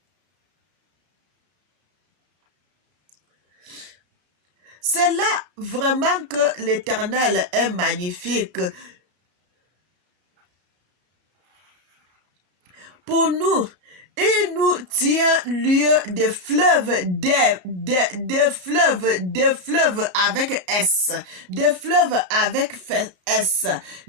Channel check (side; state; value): left; late; 33 ms